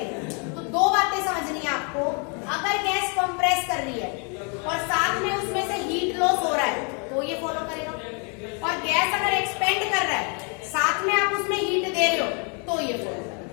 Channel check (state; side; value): quieter; right; 36.6 dB